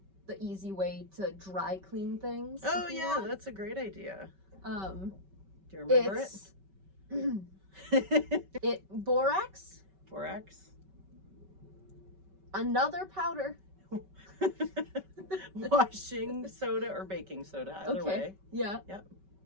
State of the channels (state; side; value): late; left; 5.2 ms